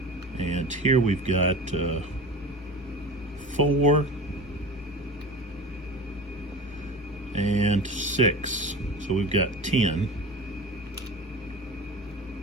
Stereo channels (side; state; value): both; normal; correlation 0.34